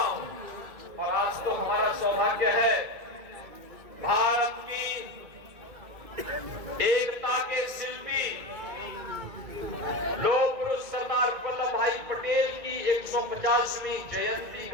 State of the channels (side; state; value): left; late; 2.1 ms